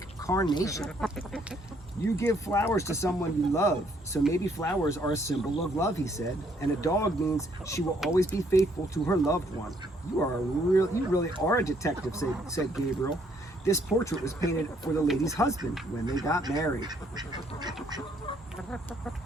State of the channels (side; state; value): both; normal; correlation 0.67